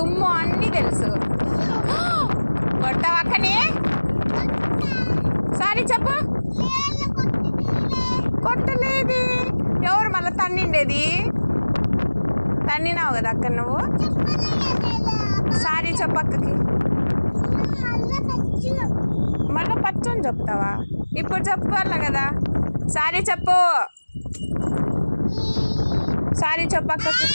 అన్నీ తెలుసు. కొట్టావా అక్కని? సారీ చెప్పు. కొట్టలేదు. ఎవరు మళ్ళీ తన్నిండేది? తన్నినావు కదా అక్క నువ్వు. సారీ చెప్పు అక్కకి. మళ్ళీ పచ్చని చెప్తావా? ఇప్పుడు చెప్పాల కదా. సారీ చెప్పు. సారీ చెప్పు అక్కకి.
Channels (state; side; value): inverted; both; correlation -1.00